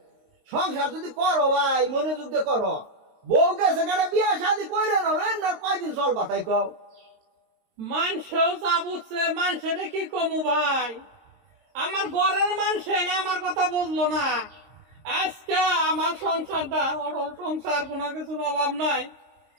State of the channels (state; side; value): late; left; 22 ms